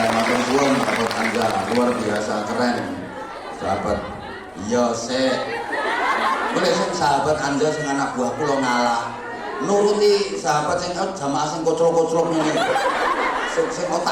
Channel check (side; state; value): both; identical; correlation 1.00